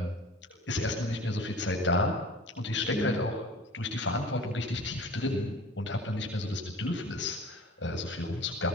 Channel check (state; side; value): normal; both; correlation 0.42